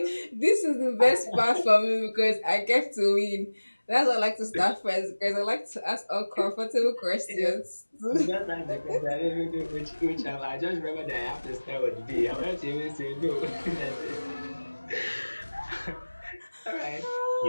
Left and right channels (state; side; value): inverted; both; correlation -1.00